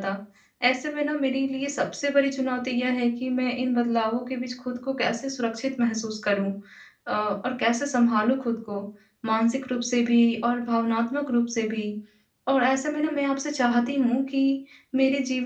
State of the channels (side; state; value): both; identical; correlation 1.00